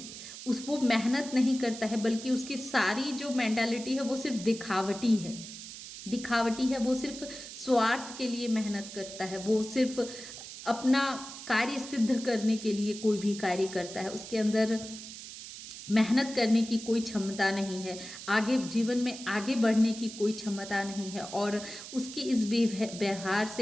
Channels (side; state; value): right; noise; hiss, 12 dB below the sound